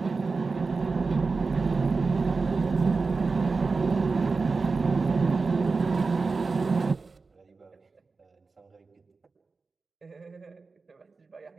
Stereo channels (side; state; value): left; quieter; 4.2 dB